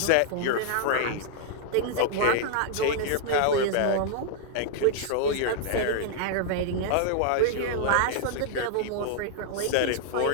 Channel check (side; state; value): both; different; correlation 0.00